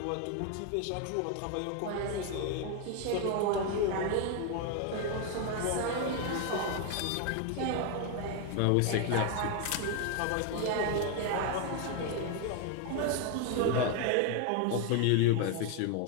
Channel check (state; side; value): different; both; correlation 0.01